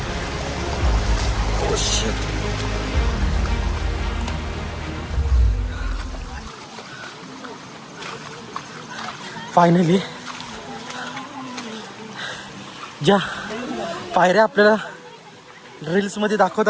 फायनली ज्या पायऱ्या आपल्याला रील्समध्ये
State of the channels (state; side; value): identical; both; correlation 1.00